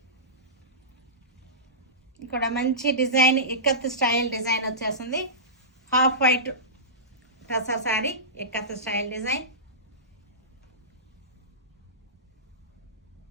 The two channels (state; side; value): normal; both; correlation -0.19